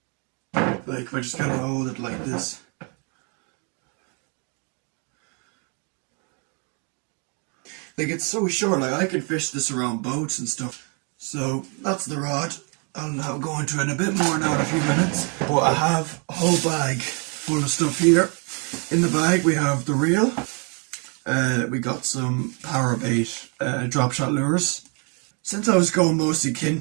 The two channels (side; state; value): left; quieter; 36.7 dB